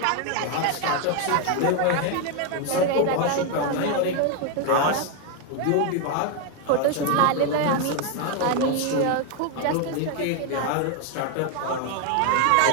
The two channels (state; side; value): different; both; correlation 0.01